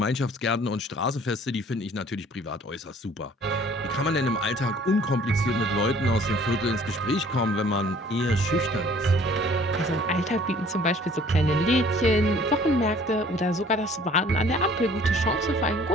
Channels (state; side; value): normal; both; correlation 0.54